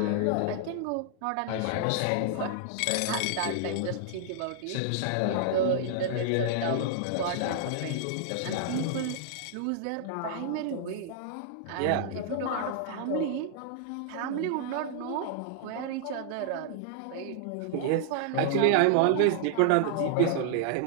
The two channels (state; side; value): different; both; correlation -0.01